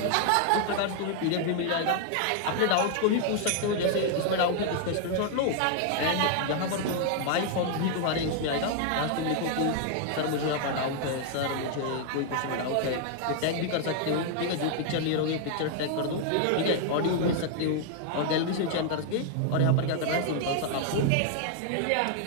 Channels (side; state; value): both; different; correlation 0.00